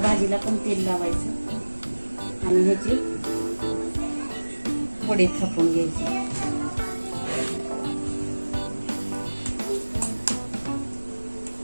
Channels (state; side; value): inverted; both; correlation -1.00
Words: भाजीला पण तेल लावायचं आणि ह्याची वडे थापून घ्यायचे.